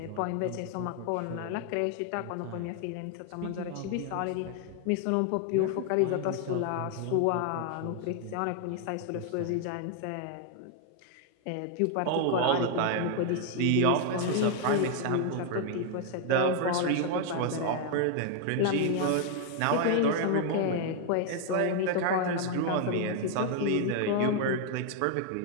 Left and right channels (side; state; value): both; different; correlation 0.00